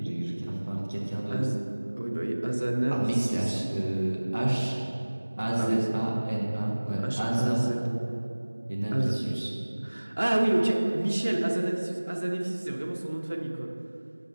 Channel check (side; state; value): both; inverted; correlation -1.00